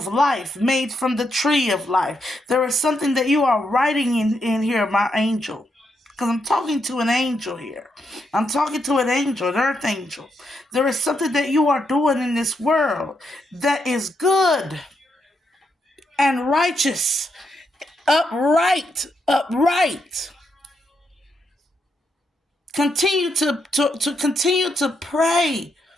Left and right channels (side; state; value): both; normal; correlation 0.80